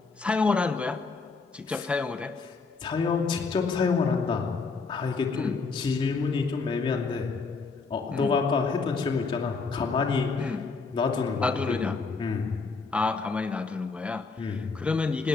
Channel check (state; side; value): quieter; right; 4.5 dB